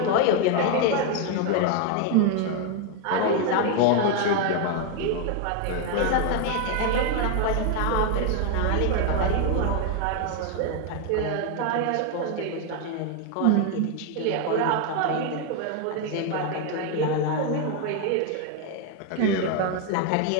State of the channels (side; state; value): both; different; correlation 0.01